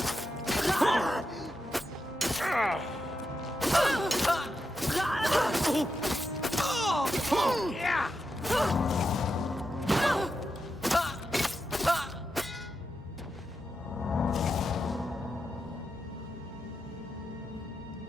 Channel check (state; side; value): normal; both; correlation 0.86